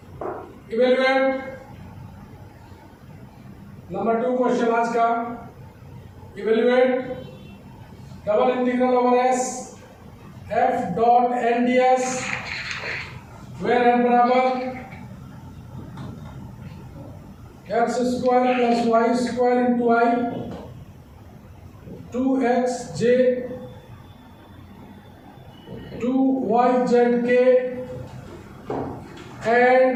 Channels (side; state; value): both; identical; correlation 1.00